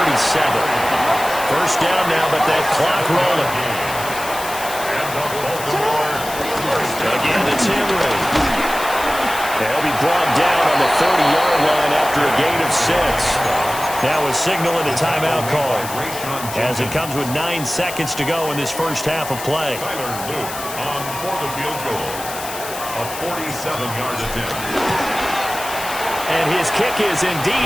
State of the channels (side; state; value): left; noise; hiss, 10 dB below the sound